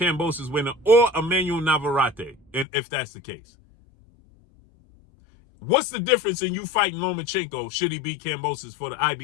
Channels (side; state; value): right; drops out; at 2.7 s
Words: winner or Emmanuel Navarrete, and if that's the case. What's the difference in you fighting Lomachenko, should he beat Kambosos for the